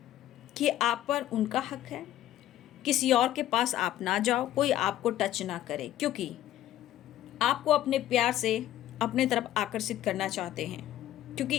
कि आप पर उनका हक है, किसी और के पास आप ना जाओ, कोई आपको टच ना करे, क्योंकि आपको अपने प्यार से अपने तरफ आकर्षित करना चाहते हैं। क्योंकि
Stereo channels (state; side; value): quieter; right; 12.9 dB